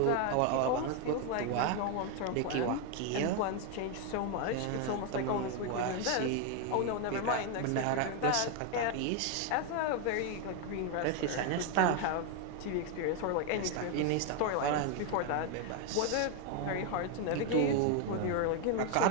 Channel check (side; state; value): both; different; correlation 0.01